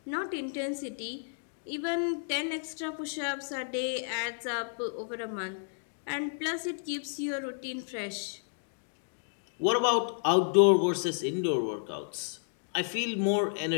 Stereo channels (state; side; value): silent; right; digital silence